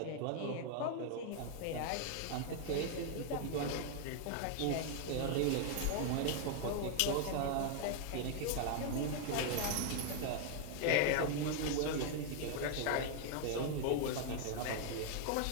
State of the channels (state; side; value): different; both; correlation 0.00